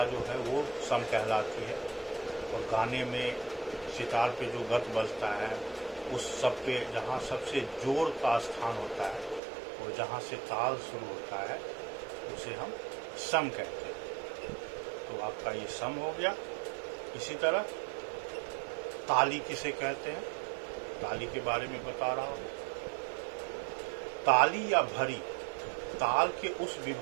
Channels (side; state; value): left; drops out; at 9.4 s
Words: जो है वो सम कहलाती है। और गाने में सितार पे जो गत बजता है उस सब पे जहाँ सबसे जोर का स्थान होता है और जहाँ से ताल शुरू होता है उसे हम सम कहते हैं। तो आपका ये सम हो गया। इसी तरह ताली किसे कहते हैं, ताली के बारे में बता रहा हूँ। ताली या भरी ताल के उस